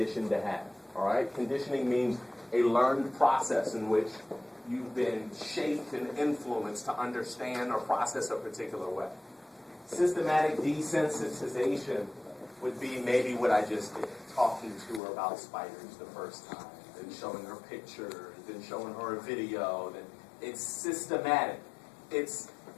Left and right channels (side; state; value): right; drops out; at 15.0 s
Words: to have. All right, conditioning means a learned process in which you've been shaped and influenced to understand or process a particular way. Systematic desensitization would be maybe what I just did, talking to her about spiders the first time, then showing her pictures, then showing her a video. Then it's systematic. It's